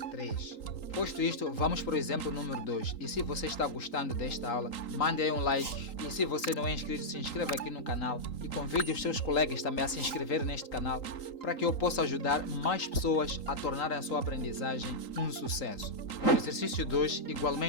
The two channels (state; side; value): late; right; 3.8 ms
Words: 3. Posto isto, vamos para o exemplo número 2. E se você está gostando desta aula, mande aí um like. E se você não é inscrito, se inscreva aqui no canal e confirme convide os seus colegas também a se inscrever neste canal para que eu possa ajudar mais pessoas a tornarem a sua aprendizagem um sucesso. No exercício 2,